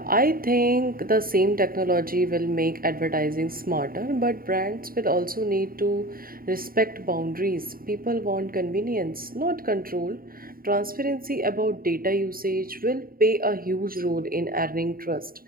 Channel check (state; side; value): late; left; 0.42 ms